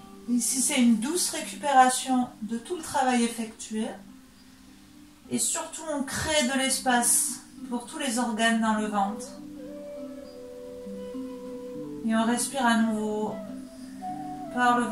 Ici, c'est une douce récupération de tout le travail effectué. Et surtout, on crée de l'espace pour tous les organes dans le ventre. Et on respire à nouveau par le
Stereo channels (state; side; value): identical; both; correlation 1.00